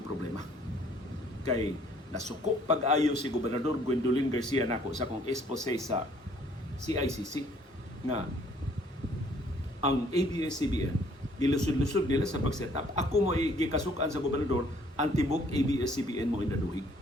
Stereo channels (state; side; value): normal; both; correlation 0.61